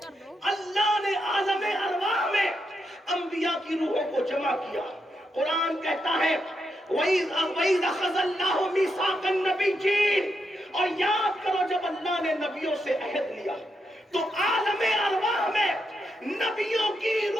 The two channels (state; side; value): normal; both; correlation 0.83